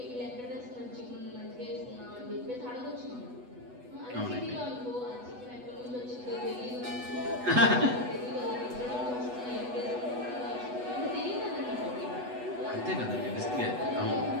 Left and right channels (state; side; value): late; left; 8.1 ms